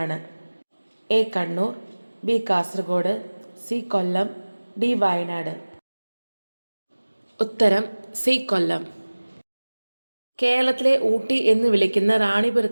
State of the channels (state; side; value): inverted; both; correlation -1.00